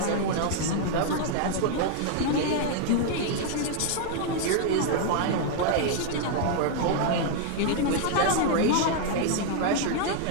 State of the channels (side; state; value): both; different; correlation 0.00